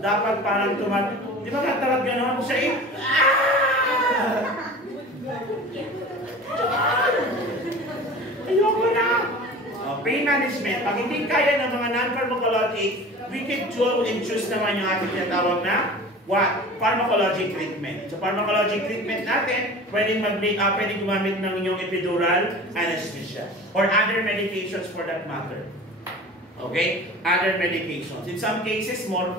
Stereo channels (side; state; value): both; normal; correlation 0.38